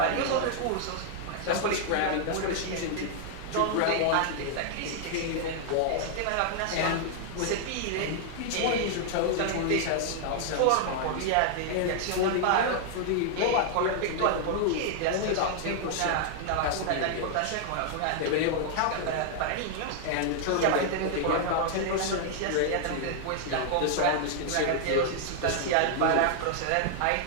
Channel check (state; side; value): different; both; correlation 0.00